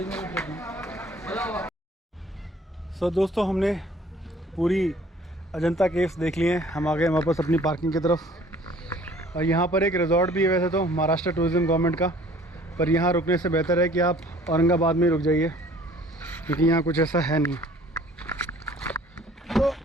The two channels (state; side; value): normal; both; correlation 0.53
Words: सो दोस्तों, हमने पूरी अजंता केव्स देख लिए हैं। हम आ गए वापस अपनी पार्किंग की तरफ। और यहाँ पर एक रिजॉर्ट भी है वैसे तो महाराष्ट्र टूरिज्म गवर्नमेंट का, पर यहाँ रुकने से बेहतर है कि आप औरंगाबाद में रुक जाइए, क्योंकि यहाँ कुछ ऐसा है नहीं। तो